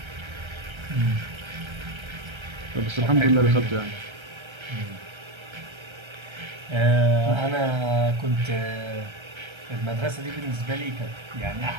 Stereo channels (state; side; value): late; left; 1.3 ms